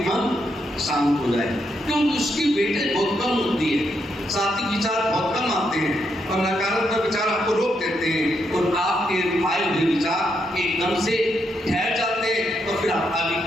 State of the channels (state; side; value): normal; both; correlation 0.79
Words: मन शांत हो जाए, क्योंकि उसकी वेटेज बहुत कम होती है। सात्विक विचार बहुत कम आते हैं और नकारात्मक विचार आपको रोक देते हैं और आपके आए हुए विचार एकदम से ठहर जाते हैं और फिर आप आगे